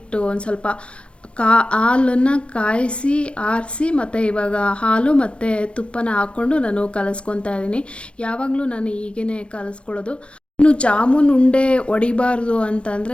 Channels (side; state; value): right; late; 0.059 ms